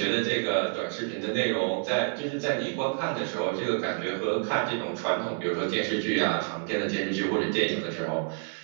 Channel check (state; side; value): silent; left; 59 dB below the other